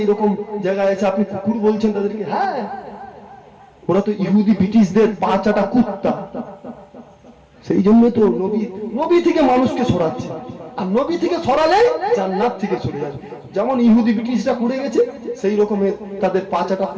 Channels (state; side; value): identical; both; correlation 1.00